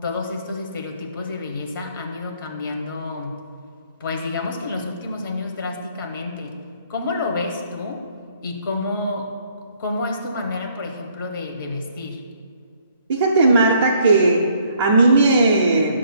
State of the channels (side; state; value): both; inverted; correlation -0.65